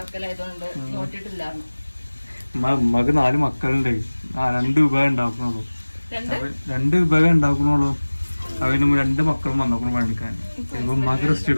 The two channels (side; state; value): both; inverted; correlation -1.00